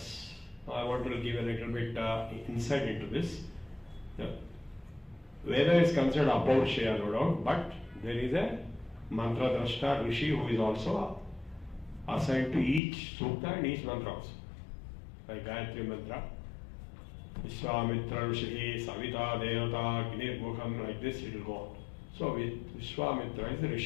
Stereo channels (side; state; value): right; drops out; at 12.8 s